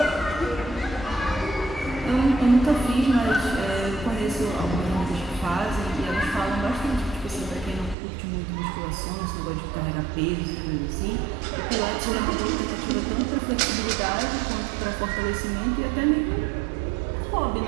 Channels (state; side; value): drops out; left; at 8.0 s